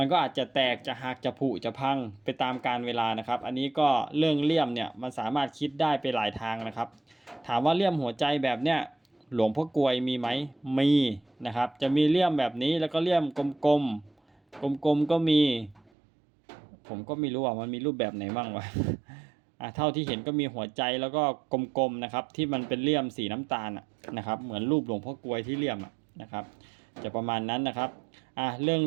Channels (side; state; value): left; drops out; at 15.9 s